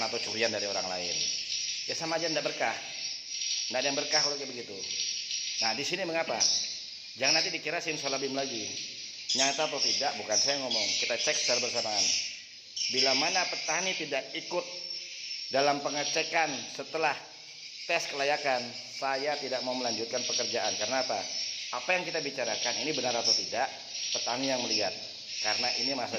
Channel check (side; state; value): both; identical; correlation 1.00